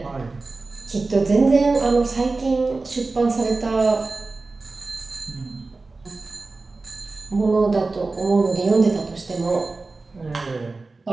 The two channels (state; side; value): quieter; left; 3.6 dB